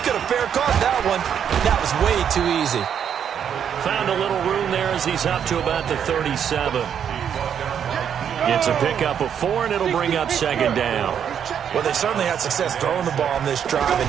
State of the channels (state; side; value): quieter; left; 8.4 dB